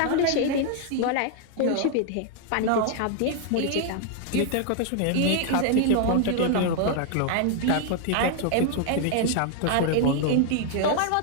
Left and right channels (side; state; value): both; different; correlation 0.00